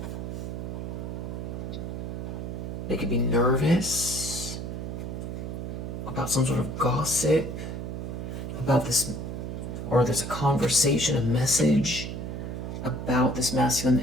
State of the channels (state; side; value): noise; right; hum, 5 dB below the sound